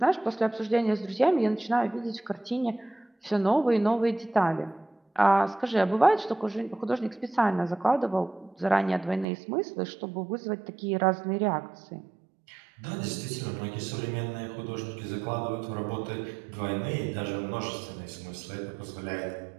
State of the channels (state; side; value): drops out; left; at 9.2 s